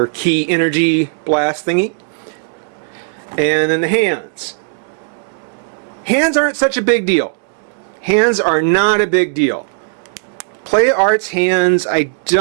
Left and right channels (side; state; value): left; silent; digital silence